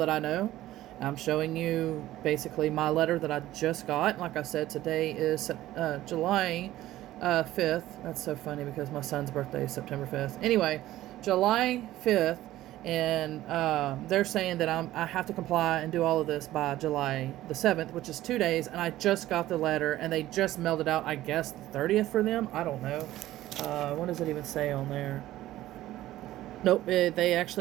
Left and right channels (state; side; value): quieter; left; 15.0 dB